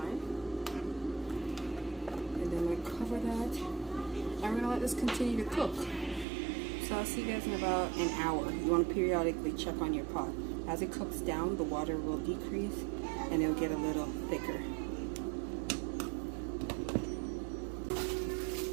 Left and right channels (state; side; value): drops out; left; at 6.2 s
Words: And then we're going to cover that. And we're going to let this continue to cook. So I'll see you guys in about an hour. You want to periodically check on your pot. As it cooks down, the water will decrease and it'll get a little thicker.